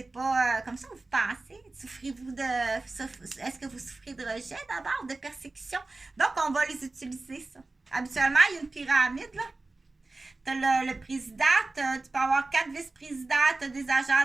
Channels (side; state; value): left; quieter; 3.3 dB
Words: pas comme ça que vous pensez. Souffrez-vous est-ce que vous souffrez de rejet d'abord, de persécution? Donc, on va les utiliser, ça. Habituellement, il y a une pyramide, là. Tu as le président, tu peux avoir 4 vice-présidents, tu as des